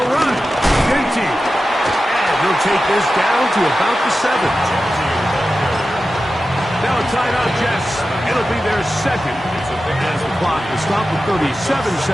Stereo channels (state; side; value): normal; both; correlation 0.93